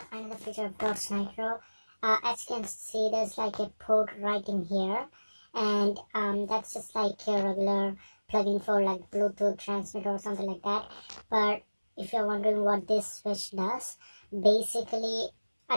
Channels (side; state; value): both; inverted; correlation -1.00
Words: Another feature of Dodge Nitro, as you can see, there's like a port right in here, and that's just like a regular plug-in for like Bluetooth transmitter or something like that. But if you're wondering what this switch does, basically